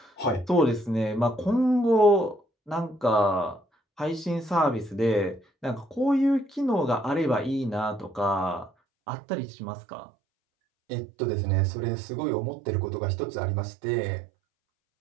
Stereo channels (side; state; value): left; drops out; at 8.7 s